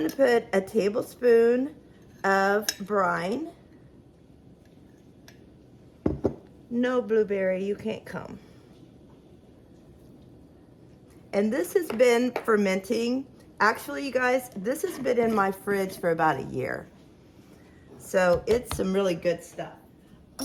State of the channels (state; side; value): identical; both; correlation 1.00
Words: to put a tablespoon of brine. No, blueberry, you can't come. And this has been fermenting. Actually, you guys, this has been in my fridge for about a year. So it's some really good stuff.